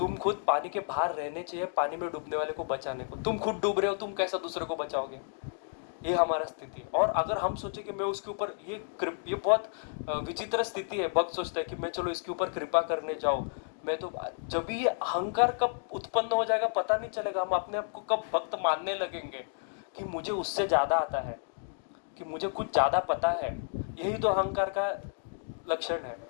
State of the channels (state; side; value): silent; right; digital silence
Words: खुद पानी के बाहर रहने चाहिए, पानी में डूबने वाले को बचाने को। तुम खुद डूब रहे हो, तुम कैसा दूसरे को बचाओगे, ये हमारा स्थिति है। और अगर हम सोचे कि मैं उसके ऊपर ये बहुत विचित्र स्थिति है। भक्त सोचता है कि मैं चलो इसके ऊपर कृपा करने जाऊं, मैं तो जब भी ये अहंकार कब उत्पन्न हो जाएगा पता नहीं चलेगा। हम अपने आप को कब भक्त मानने लगेंगे कि मुझे उससे ज्यादा आता है, कि मुझे कुछ ज्यादा पता है, यही तो अहंकार का लक्षण है,